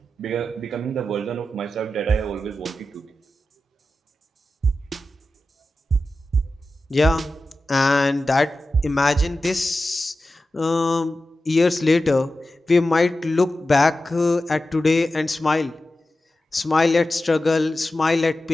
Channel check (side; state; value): both; normal; correlation 0.93